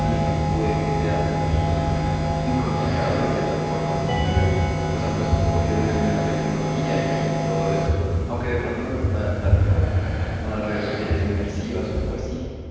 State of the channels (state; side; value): identical; both; correlation 1.00